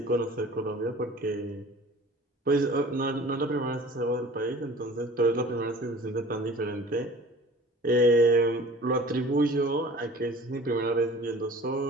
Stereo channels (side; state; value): both; normal; correlation 0.45